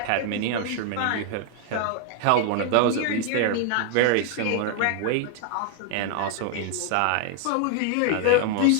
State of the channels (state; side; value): different; both; correlation 0.00